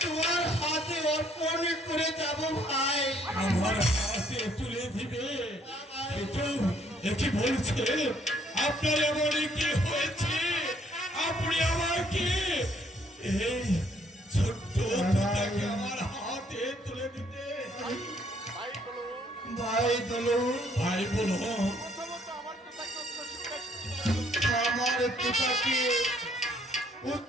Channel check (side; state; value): both; normal; correlation 0.66